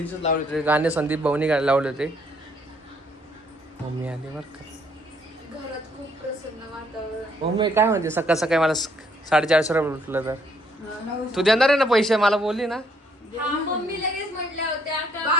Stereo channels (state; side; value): normal; both; correlation 0.68